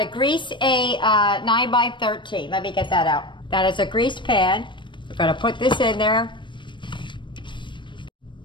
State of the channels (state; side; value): late; right; 0.23 ms